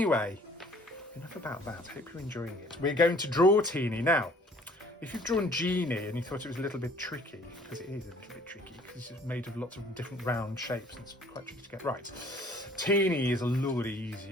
enough about that. Hope you're enjoying it. We're going to draw Teeny. Now, if you've drawn Genie and you thought it was a little bit tricky, because it is a little bit tricky, because it's made of lots of different round shapes and it's quite tricky to get right. Teeny is a lot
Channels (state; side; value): normal; both; correlation 0.55